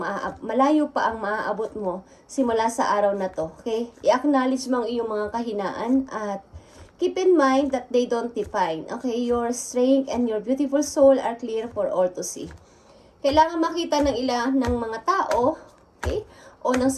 pa ang maaabot mo simula sa araw na to. Okay? I-acknowledge mo ang iyong mga kahinaan at keep in mind that they don't define. Okay? Your strength and your beautiful soul are clear for all to see. Kailangan makita ng ng mga tao, okay? O ng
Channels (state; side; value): identical; both; correlation 1.00